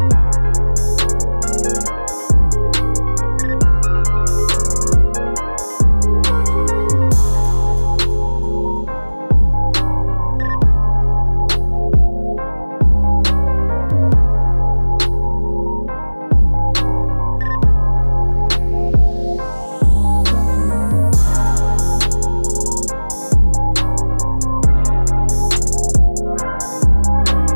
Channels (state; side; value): inverted; both; correlation -1.00